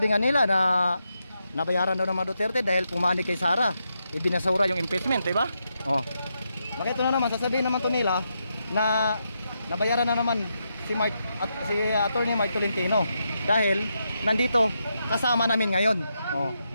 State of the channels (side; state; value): both; inverted; correlation -0.84